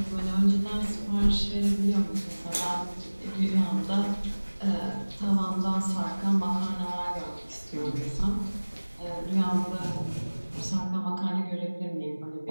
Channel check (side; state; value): both; inverted; correlation -1.00